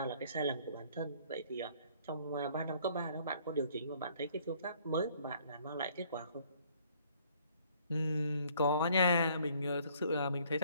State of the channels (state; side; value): inverted; both; correlation -0.61